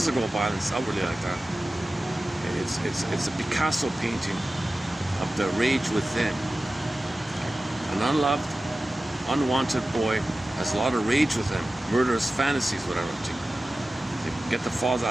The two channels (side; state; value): both; normal; correlation 0.95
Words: violence outwardly like that. It's a Picasso painting of the rage within. An unloved, unwanted boy has a lot of rage within, murderous fantasies, whatever, to get the father